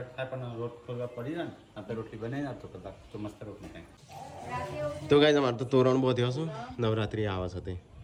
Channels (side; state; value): both; identical; correlation 1.00